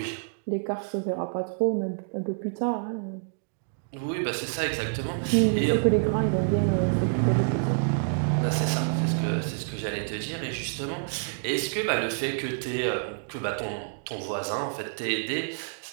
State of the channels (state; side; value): silent; left; digital silence